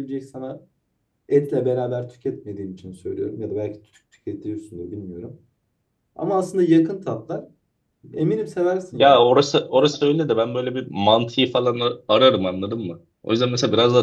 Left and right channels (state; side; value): identical; both; correlation 1.00